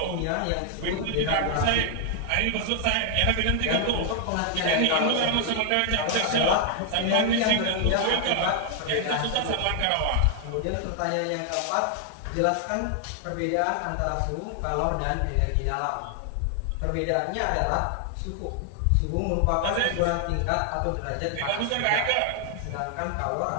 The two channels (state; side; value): different; both; correlation 0.00